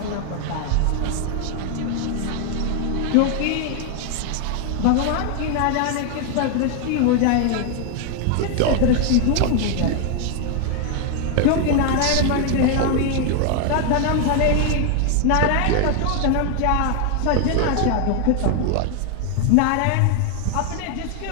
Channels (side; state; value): both; different; correlation 0.01